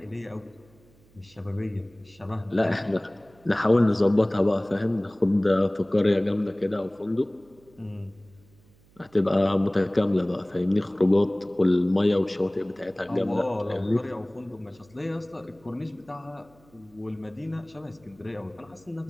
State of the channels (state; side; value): noise; right; hum, 29 dB below the sound